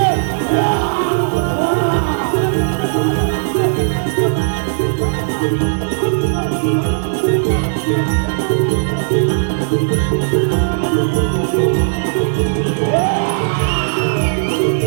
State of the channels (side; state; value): left; silent; digital silence